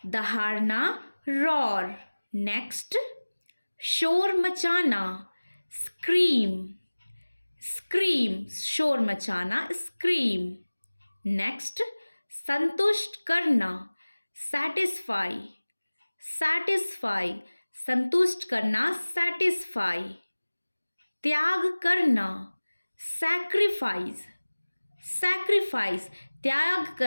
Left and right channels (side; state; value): both; inverted; correlation -1.00